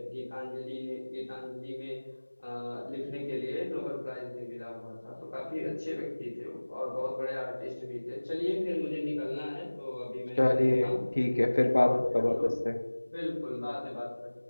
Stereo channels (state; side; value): inverted; both; correlation -1.00